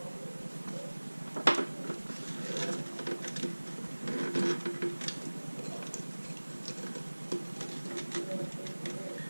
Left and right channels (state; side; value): inverted; both; correlation -1.00